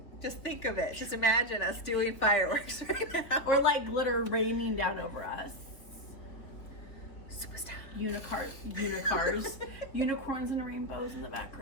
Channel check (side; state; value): right; late; 3.4 ms